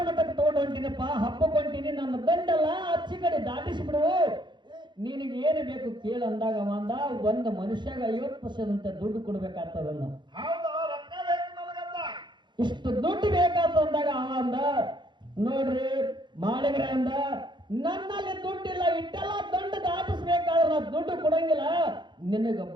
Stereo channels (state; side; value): late; left; 0.22 ms